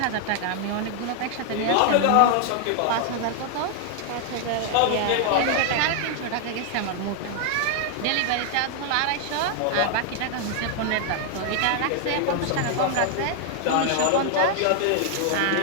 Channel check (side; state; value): both; different; correlation 0.00